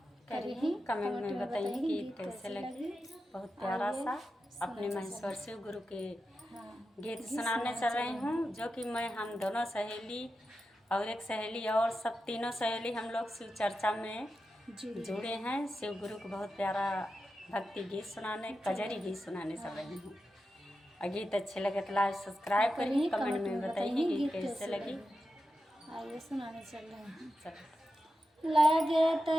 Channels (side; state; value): both; normal; correlation 0.90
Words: करिए, कमेंट में बताइए कि गीत कैसे लगे। बहुत प्यारा सा अपने महेश्वर शिव गुरु के गीत सुनाने चल रही हूँ, जो कि हम दोनों सहेली और एक सहेली और सब तीनों सहेली हम लोग शिव चर्चा में जुड़े हैं। शिव गुरु को बहुत प्यारा भक्ति गीत सुनाने, कजरी गीत सुनाने चल रही हूँ। और गीत अच्छे लगे तो लाइक सब्सक्राइब करिए, कमेंट में बताइए गीत कैसे लगी। आइए सुनाने चल रहे हैं। चलो।